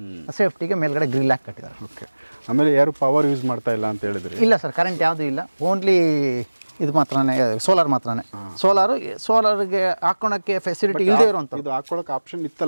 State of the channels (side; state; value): both; inverted; correlation -1.00